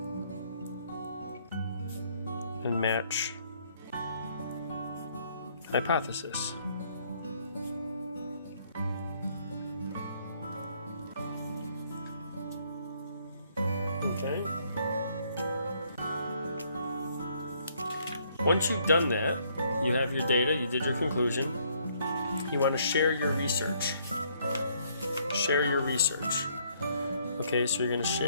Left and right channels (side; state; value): both; inverted; correlation -0.67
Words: And match hypothesis. Okay. Once you've done that, you have your data, you did your conclusion, you want to share your research. Share your research. Okay, so you're going to